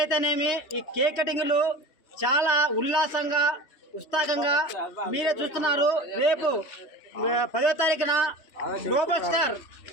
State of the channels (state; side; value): late; right; 2.7 ms